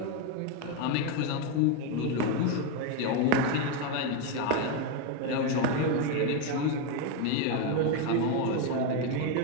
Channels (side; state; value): both; different; correlation 0.02